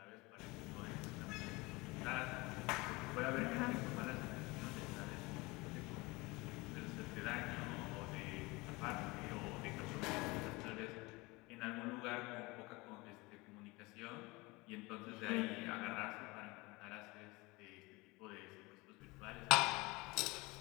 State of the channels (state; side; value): quieter; right; 23.8 dB